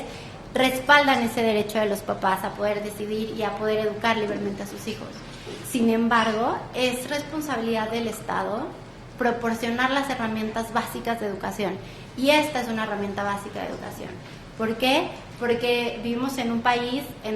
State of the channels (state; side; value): identical; both; correlation 1.00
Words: respaldan ese derecho de los papás a poder decidir y a poder educar libremente a sus hijos. Sin embargo, es responsabilidad del Estado proporcionar las herramientas básicas de educación. Y esta es una herramienta básica de educación. ¿Por qué? Porque vivimos en un país